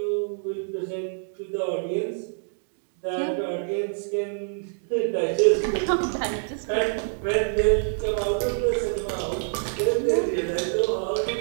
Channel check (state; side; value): silent; left; digital silence